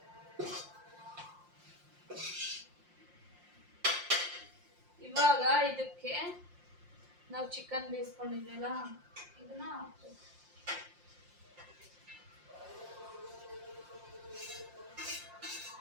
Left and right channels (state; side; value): late; left; 5.7 ms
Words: ಇವಾಗ ಇದಕ್ಕೆ ನಾವು ಚಿಕನ್ ಬೇಯಿಸ್ಕೊಂಡಿದ್ವಲ್ಲ ಇದನ್ನ ಹಾಕ್ಬೇಕು.